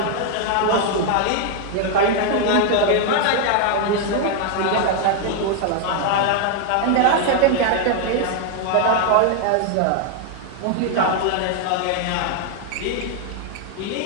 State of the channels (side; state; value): both; different; correlation 0.00